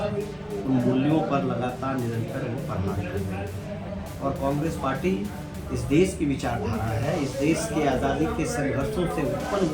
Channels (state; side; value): identical; both; correlation 1.00